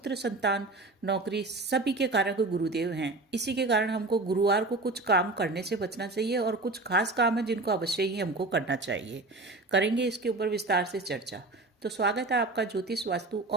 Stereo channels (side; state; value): left; quieter; 3.1 dB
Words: संतान, नौकरी, सभी के कारक गुरुदेव हैं। इसी के कारण हमको गुरुवार को कुछ काम करने से बचना चाहिए और कुछ खास काम है जिनको अवश्य ही हमको करना चाहिए। करेंगे इसके ऊपर विस्तार से चर्चा। तो स्वागत है आपका ज्योतिष वास्तु